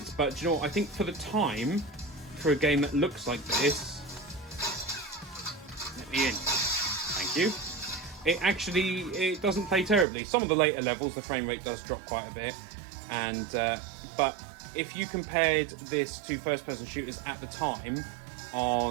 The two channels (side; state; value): left; drops out; at 10.1 s